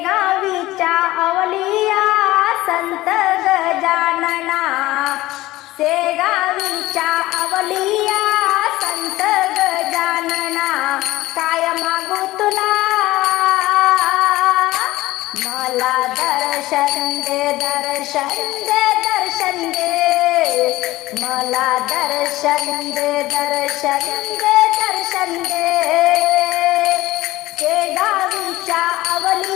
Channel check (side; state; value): right; quieter; 17.5 dB